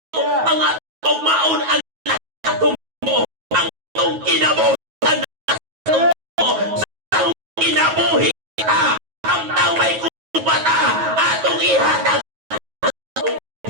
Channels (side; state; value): left; late; 9.3 ms